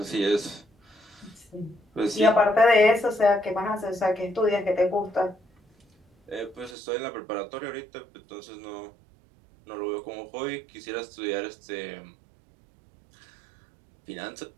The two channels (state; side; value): drops out; left; at 6.8 s